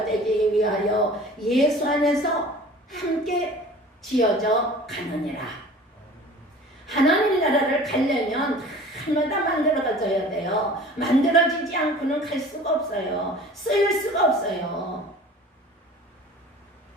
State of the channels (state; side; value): normal; both; correlation 0.43